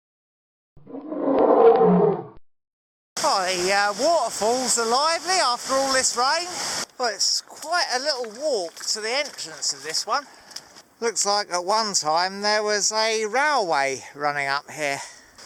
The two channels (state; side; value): identical; both; correlation 1.00